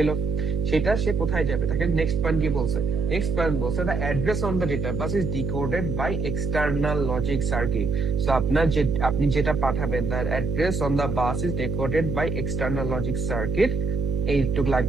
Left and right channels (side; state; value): right; noise; hum, 2 dB below the sound